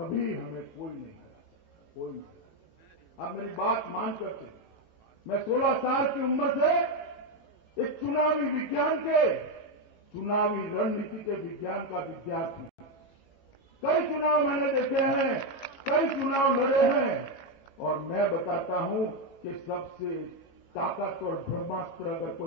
हमें कोई नहीं हरा सकता, कोई नहीं हरा सकता। आप मेरी बात मानकर चलिए। मैं 16 साल की उम्र से एक चुनावी विज्ञान के, चुनावी रणनीति के विज्ञान का विद्यार्थी। कई चुनाव मैंने देखे हैं, कई चुनाव लड़े हैं, और मैं बताता हूं कि सबसे ताकतवर ब्रह्मास्त्र अगर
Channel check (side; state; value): right; late; 18 ms